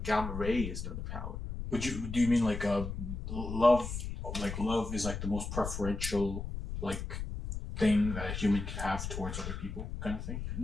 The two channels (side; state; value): left; noise; rumble, 6 dB below the sound